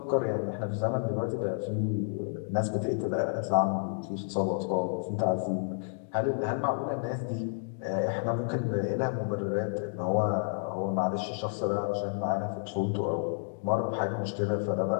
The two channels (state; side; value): silent; right; digital silence